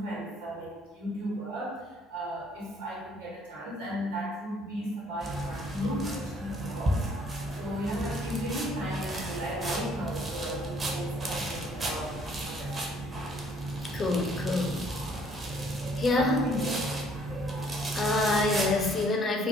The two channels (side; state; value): both; normal; correlation 0.62